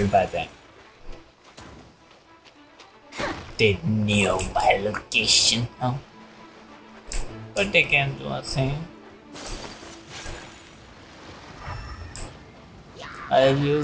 by them. They knew my location, huh? But they can't do a thing. I've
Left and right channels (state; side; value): identical; both; correlation 1.00